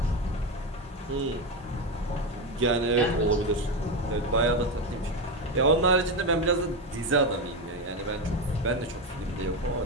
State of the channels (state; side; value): normal; both; correlation 0.13